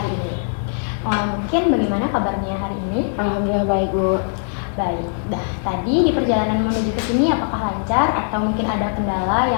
ini. Mungkin bagaimana kabarnya hari ini? Alhamdulillah baik Bu. Baik. Tadi di perjalanan menuju ke sini apakah lancar atau mungkin ada kendala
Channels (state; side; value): silent; right; digital silence